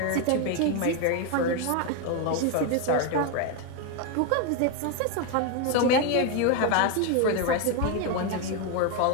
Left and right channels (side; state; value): both; different; correlation 0.01